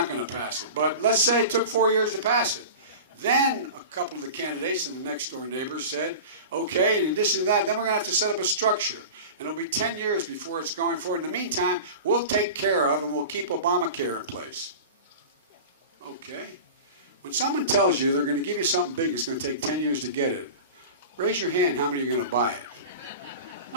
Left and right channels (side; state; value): both; inverted; correlation -0.33